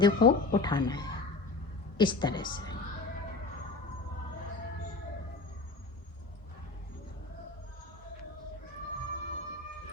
को उठाना है, इस तरह से।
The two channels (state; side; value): quieter; right; 3.6 dB